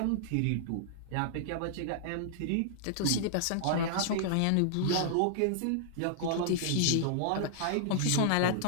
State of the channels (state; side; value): different; both; correlation -0.01